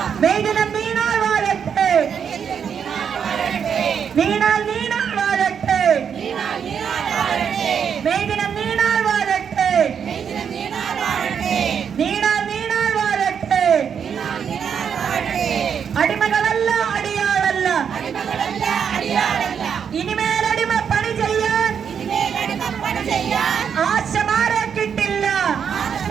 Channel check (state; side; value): quieter; left; 7.4 dB